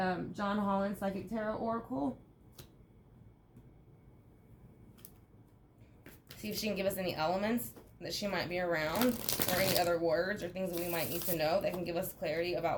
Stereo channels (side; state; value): both; identical; correlation 1.00